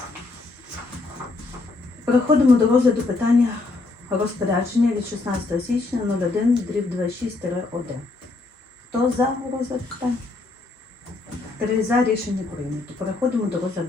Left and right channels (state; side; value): quieter; right; 3.5 dB